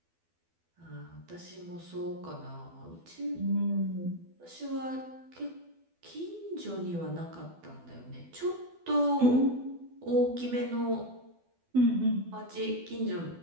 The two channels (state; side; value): late; left; 12 ms